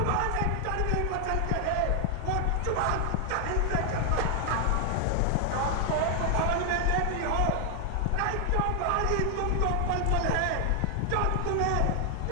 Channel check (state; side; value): different; both; correlation 0.00